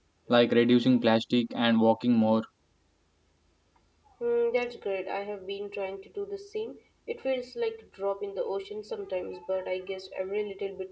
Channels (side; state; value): both; identical; correlation 1.00